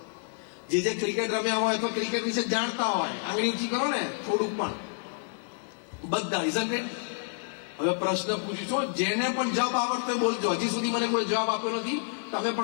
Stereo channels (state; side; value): silent; right; digital silence